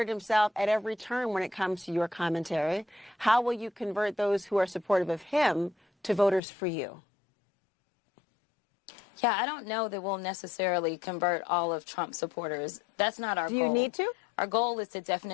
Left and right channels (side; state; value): right; drops out; at 6.4 s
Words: himself at every turn when it comes to your commentary. How will you convert those who are supportive of him to voters for you? Yeah, I don't know that we'll necessarily convert all of Trump supporters. That's not our goal. Do you need to? Our goal is to